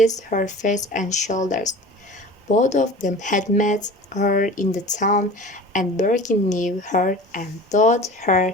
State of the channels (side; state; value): both; normal; correlation 0.38